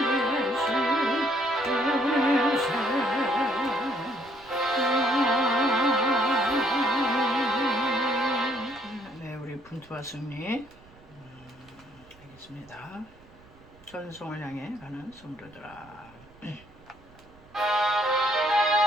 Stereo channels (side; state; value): right; noise; rumble, 26 dB below the sound